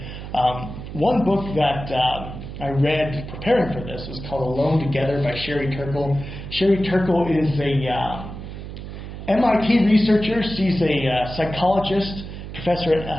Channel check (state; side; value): noise; right; hum, 10 dB below the sound